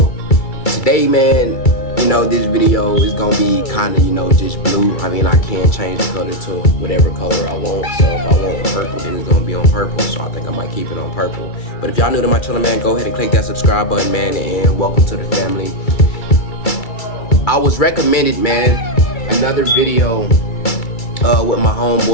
today, man, you know, this video is gonna be kind of, you know, just blue. I mean, I can change the color to whatever color I want. So if I want purple, then it's gonna be on purple. So I think I might keep it on purple. But if y'all new to my channel, man, go ahead and click that subscribe button, man, and welcome to the family. I was recommended, man, another video with my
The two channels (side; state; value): right; late; 2.3 ms